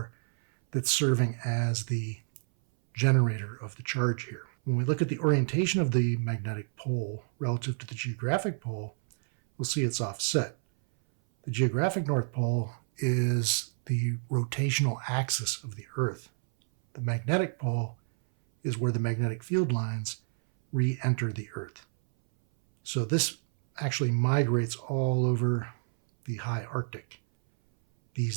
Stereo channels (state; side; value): silent; left; 58 dB below the other